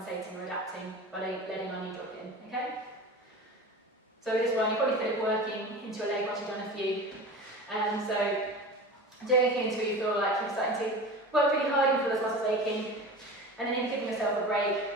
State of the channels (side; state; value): both; normal; correlation 0.33